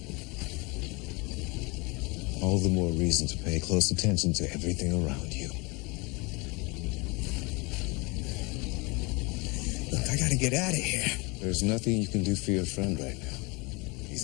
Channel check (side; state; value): right; quieter; 27.5 dB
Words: All the more reason to pay close attention to everything around you. Look, I gotta get out of here. There's nothing you can do for your friend right now. He's